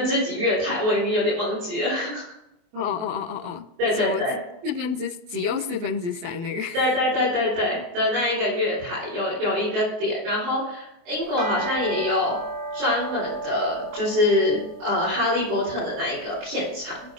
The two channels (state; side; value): late; left; 23 ms